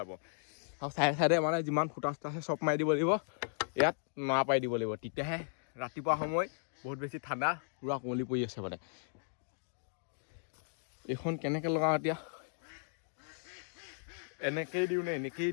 আৰু চাইডে চাইডে মানে যিমান ফুটা চুটা আছে চব মাৰি দিব লাগিব ইয়াত নৰা পাৰি দিব লাগিব তেতিয়াহে ৰাতিপুৱা সময় বহুত বেছি ঠাণ্ডা পূৰা কুঁৱলী পৰি আছে মানে এইখন কেনেকৈ লগাওঁ এতিয়া এনেকেই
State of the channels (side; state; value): right; silent; digital silence